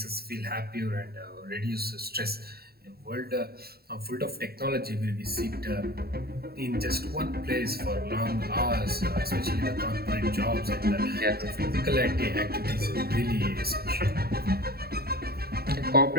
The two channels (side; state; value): left; late; 0.45 ms